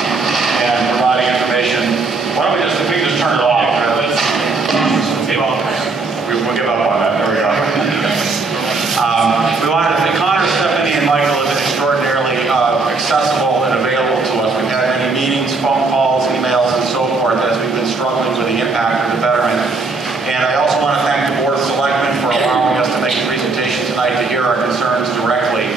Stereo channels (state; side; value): quieter; left; 3.8 dB